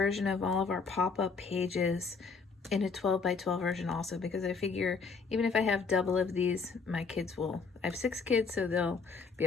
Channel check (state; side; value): quieter; right; 4.9 dB